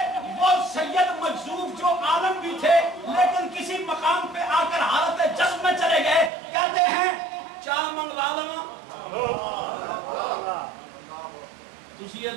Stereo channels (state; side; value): drops out; left; at 6.3 s